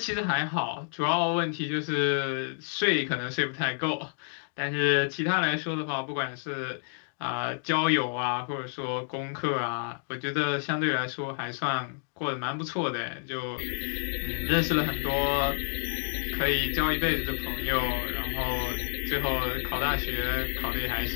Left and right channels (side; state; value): right; silent; digital silence